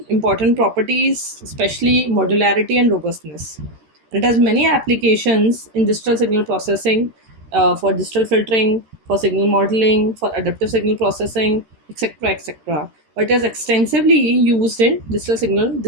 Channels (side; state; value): left; late; 13 ms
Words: important properties, especially modularity and robustness. It has many applications in digital signal processing, for digital filtering, for signal modeling, for adaptive signal processing, etc., etc. But it is extensively used in